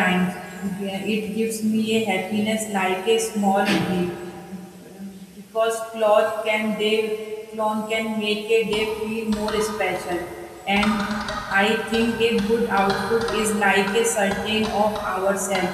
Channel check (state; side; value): identical; both; correlation 1.00